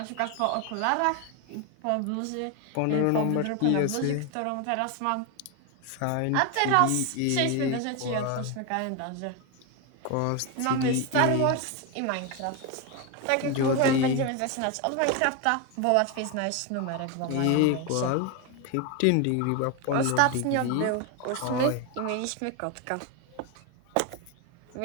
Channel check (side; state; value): both; different; correlation 0.02